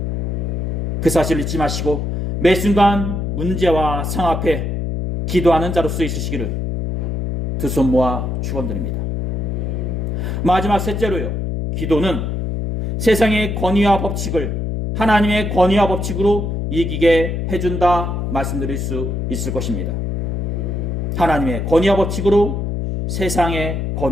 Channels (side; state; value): left; noise; hum, 2 dB below the sound